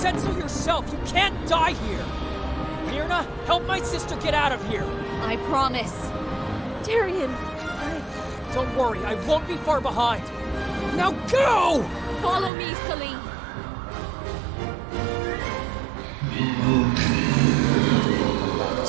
so yourself! You can't die here! Myrna, help my sister get out of here! I promise. Tyrion, Don't worry, I won't be far behind! Now go! Follow me, Celine.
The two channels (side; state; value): left; drops out; at 12.5 s